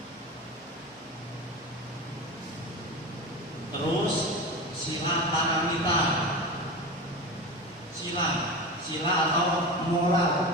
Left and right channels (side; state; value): both; normal; correlation 0.26